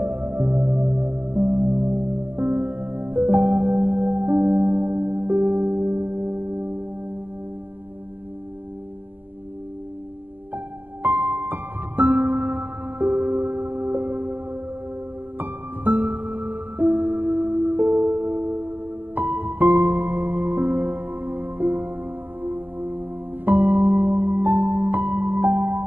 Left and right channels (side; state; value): left; late; 0.088 ms